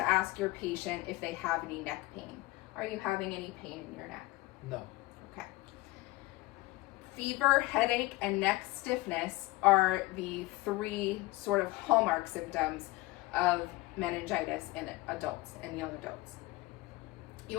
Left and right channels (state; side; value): quieter; right; 20.3 dB